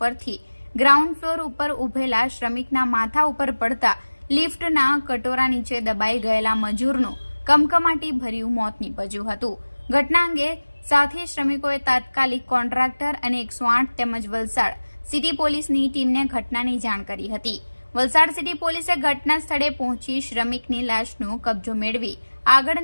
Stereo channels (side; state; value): both; inverted; correlation -1.00